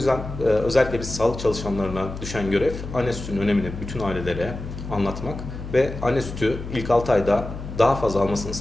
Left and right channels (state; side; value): noise; left; hum, 9 dB below the sound